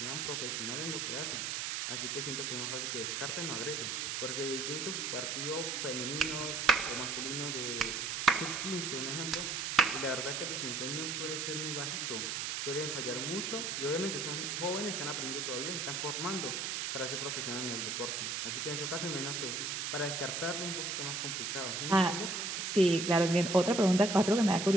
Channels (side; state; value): right; noise; hiss, 2 dB below the sound